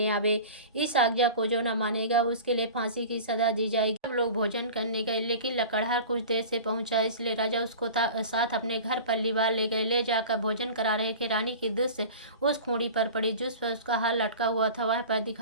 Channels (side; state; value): both; inverted; correlation -0.37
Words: आवे। इस आज्ञा को जो न मानेगा उसके लिए फांसी की सजा दी जाएगी। सब लोग भोजन करने गए, लेकिन लकड़हार कुछ देर से पहुंचा, इसलिए राजा उसको साथ अपने घर पर लिवा ले गए। ले जाकर भोजन करा रहे थे। रानी की दृष्टि उस खूंटी पर पड़ी जिस पर उसका हार लटका हुआ था। वह पर